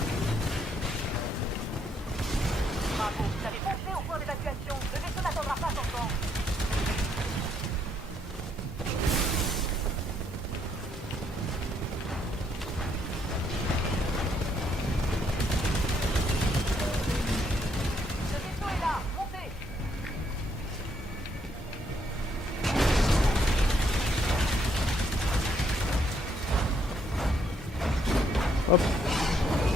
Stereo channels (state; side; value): normal; both; correlation 0.71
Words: Bravo, vous avez foncé au point d'évacuation. Le vaisseau n'attendra pas son temps. Le vaisseau est là, montez. hop.